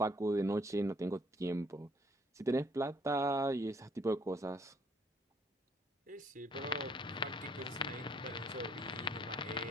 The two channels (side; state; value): both; normal; correlation 0.63